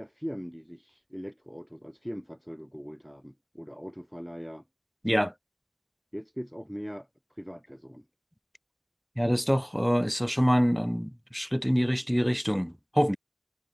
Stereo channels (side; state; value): both; identical; correlation 1.00